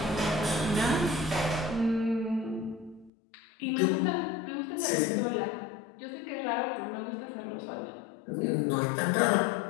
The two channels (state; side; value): drops out; right; at 3.1 s